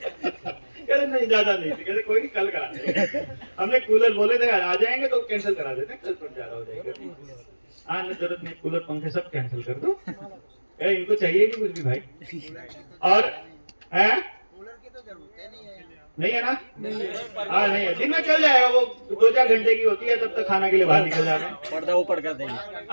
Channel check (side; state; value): both; inverted; correlation -1.00